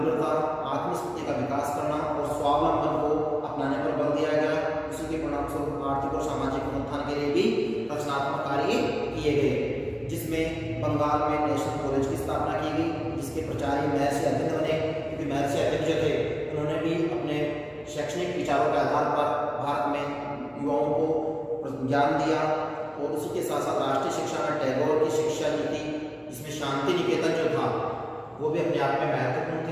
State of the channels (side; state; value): both; identical; correlation 1.00